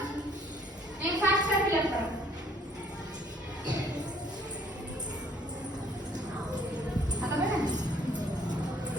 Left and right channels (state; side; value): normal; both; correlation 0.61